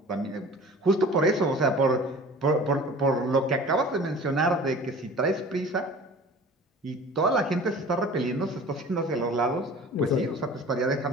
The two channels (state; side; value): normal; both; correlation 0.43